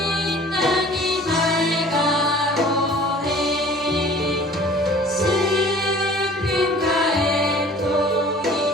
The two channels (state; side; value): normal; both; correlation 0.48